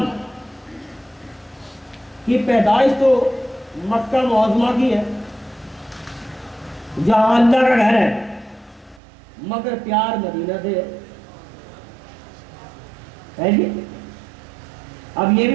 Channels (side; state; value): left; drops out; at 9.0 s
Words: کی پیدائش تو مکہ معظمہ کی ہے جہاں اللہ کا گھر ہے، مگر پیار مدینہ سے ہے جی۔ اب یہ